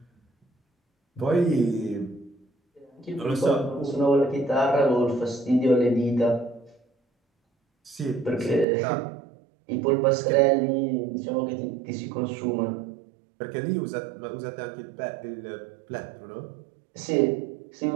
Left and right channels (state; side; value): drops out; left; at 8.7 s